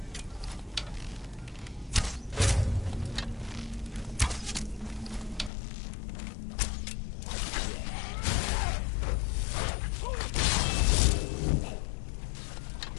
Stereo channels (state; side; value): drops out; right; at 5.5 s